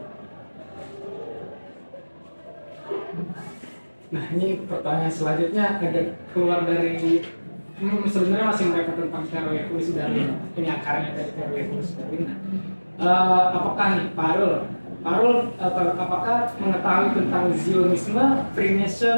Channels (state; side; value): inverted; both; correlation -1.00